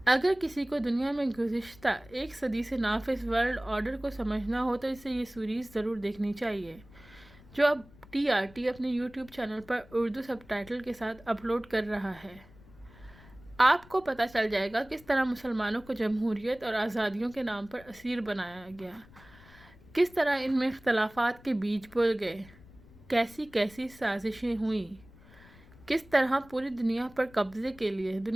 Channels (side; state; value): left; noise; rumble, 23 dB below the sound